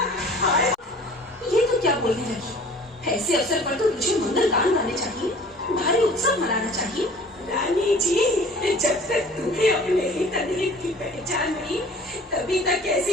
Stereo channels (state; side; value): normal; both; correlation 0.47